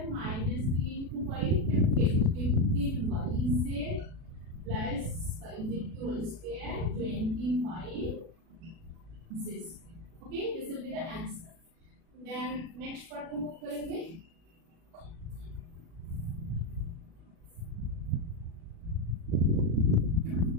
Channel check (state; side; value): late; left; 37 ms